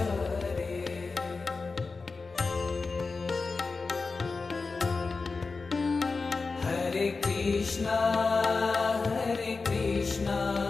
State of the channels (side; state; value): right; quieter; 4.2 dB